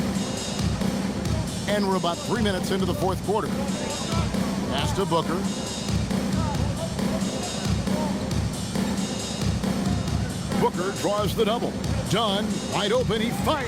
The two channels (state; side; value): identical; both; correlation 1.00